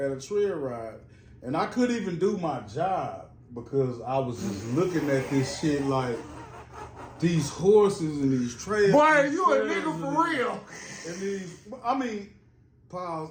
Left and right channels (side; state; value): both; identical; correlation 1.00